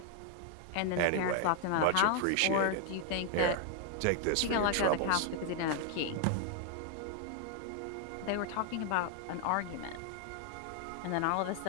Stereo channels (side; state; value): both; different; correlation 0.00